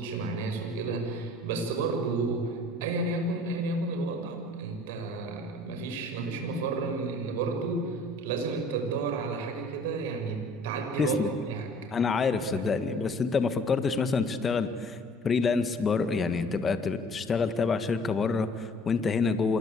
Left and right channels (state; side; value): normal; both; correlation 0.52